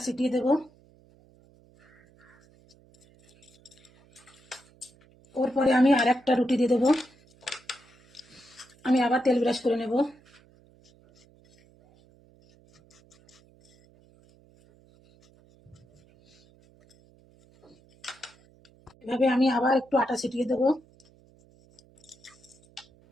ছিটিয়ে দেব। ওর পরে আমি আর একটা রুটি দিয়ে দেব। আমি আবার তেল ব্রাশ করে নেব। এভাবে আমি আবার একটু আটা ছিটিয়ে দেব।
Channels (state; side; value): noise; right; hum, 29 dB below the sound